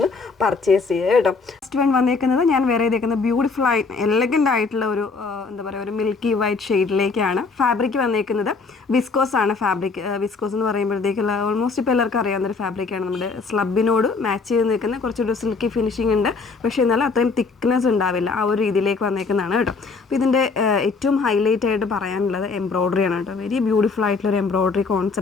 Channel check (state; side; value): quieter; right; 4.5 dB